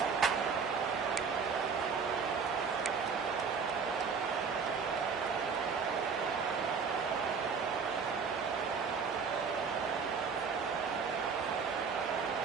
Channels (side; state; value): left; quieter; 5.7 dB